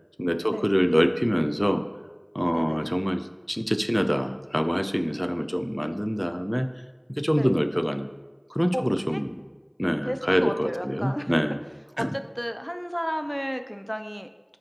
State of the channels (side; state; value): both; identical; correlation 1.00